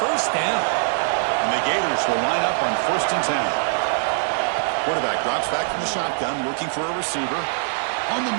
first down. And the Gators will line up on 1st and 10. Quarterback drops back from the shotgun, looking for a receiver. On the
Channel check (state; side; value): silent; left; 64 dB below the other